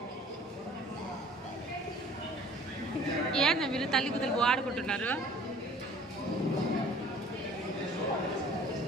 ఏంది మీరు తల్లి కుదలు ఆడుకుంటున్నారు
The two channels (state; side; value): normal; both; correlation 0.50